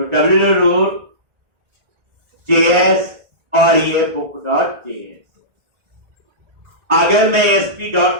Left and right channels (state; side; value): late; left; 1.8 ms